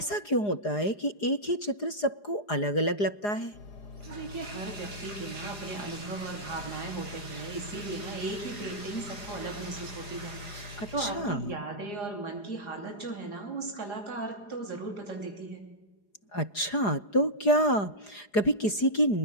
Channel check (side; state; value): right; late; 4.9 ms